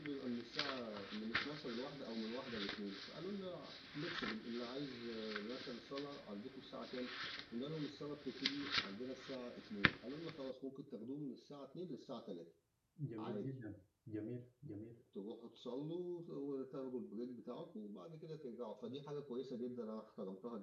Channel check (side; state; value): both; identical; correlation 1.00